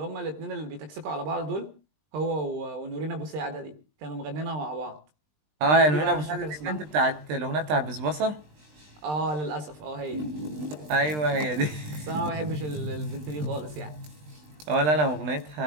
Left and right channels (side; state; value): left; late; 20 ms